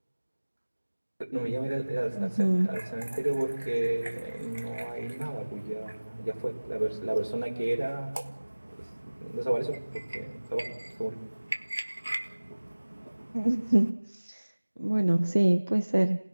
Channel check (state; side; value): inverted; both; correlation -1.00